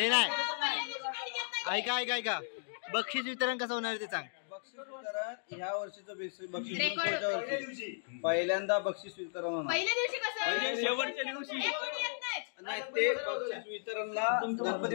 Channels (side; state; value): right; silent; digital silence